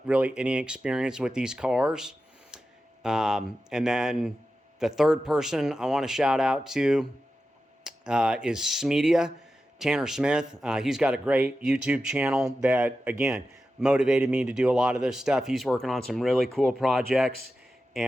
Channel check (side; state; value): both; normal; correlation 0.92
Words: really any experience with these cars. And then the third person I want to shout out to is Smedia, Tanner Smith. He's got a great YouTube channel that, again, motivated me to do a lot of this stuff. He's working on some really cool projects,